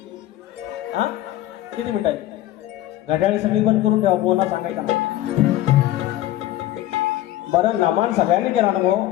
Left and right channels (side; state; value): right; quieter; 14.5 dB